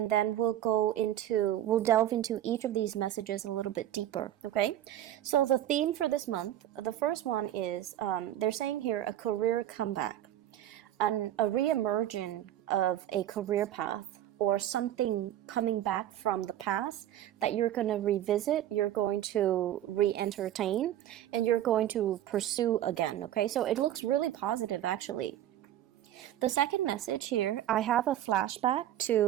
then we'll delve into each of these messages a little bit deeper, okay? So the theme for this month, the first one is, they're saying here, a career comeback, a re-emerging of a career path, or something coming back from the past that you're going to revisit, you're going to re-entertain, and you're going to pursue again, okay? So it looks really positive, actually. The second message here, I have a flashback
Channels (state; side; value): quieter; left; 12.3 dB